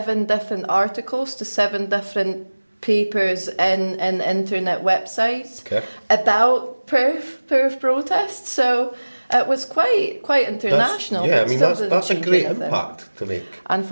different articles to 7 different papers in internet websites about Perth protests. So it was quite international. That's a great impact to make.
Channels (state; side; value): inverted; both; correlation -1.00